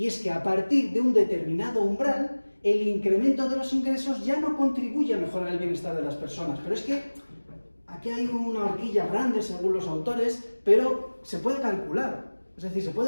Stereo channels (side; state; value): both; inverted; correlation -1.00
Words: es que a partir de un determinado umbral, el incremento de los ingresos ya no contribuye a mejorar el bienestar de las personas. Pero es que aquí hay una horquilla grande según los autores, pero se puede calcular. Es decir, se